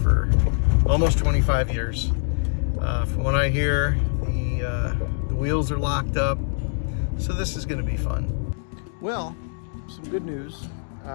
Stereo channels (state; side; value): silent; right; 63 dB below the other